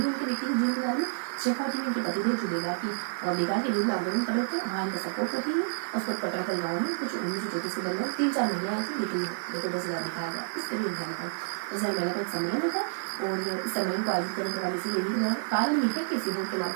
इनके व्यक्तिगत जीवन के बारे में। शेखावटी में इनके पति थे जो बेगार के विरुद्ध आंदोलन कर रहे थे, वहाँ इनका सपोर्ट करती है। उसके बाद कटराकल गाँव में कुछ 1934 के दरमियान 3-4 महिलाएं थी, लेकिन देखो 10,000 दिखाया गया। इस तरीके ध्यान रखा 10,000 महिला का एक सम्मेलन होता है और इस सम्मेलन को आयोजित करने का काम इसी लेडी के द्वारा। कारण ये है कि सिंहोट के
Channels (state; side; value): silent; left; digital silence